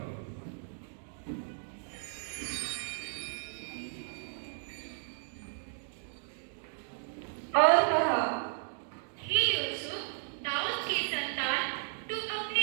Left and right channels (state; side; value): silent; left; digital silence